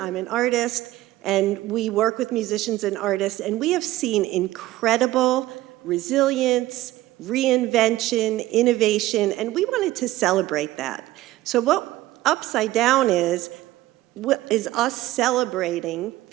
I'm an artist, and we work with musicians and artists, and we have seen incredible resilience, reinvention, innovation, and we wanted to celebrate that. So what Upside Down is us celebrating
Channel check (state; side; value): quieter; left; 16.5 dB